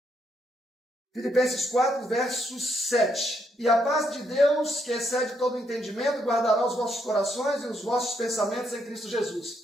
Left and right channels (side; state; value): both; normal; correlation 0.76